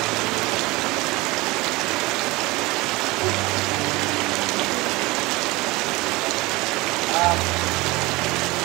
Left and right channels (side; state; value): left; quieter; 22.0 dB